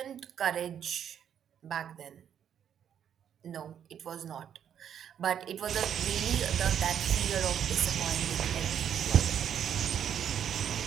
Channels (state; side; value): quieter; left; 9.0 dB